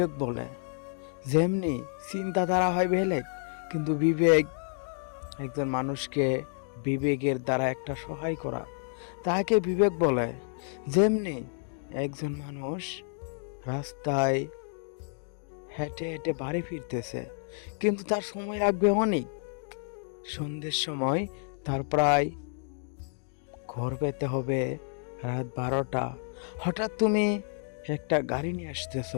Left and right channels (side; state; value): right; silent; 58 dB below the other